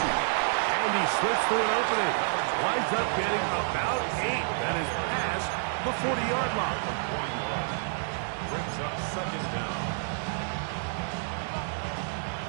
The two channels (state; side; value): silent; left; digital silence